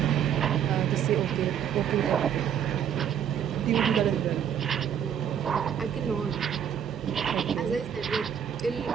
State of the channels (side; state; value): left; quieter; 8.8 dB